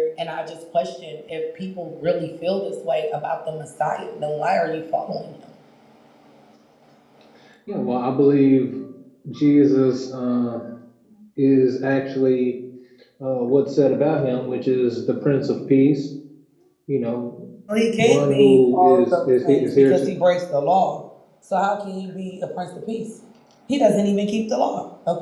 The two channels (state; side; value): identical; both; correlation 1.00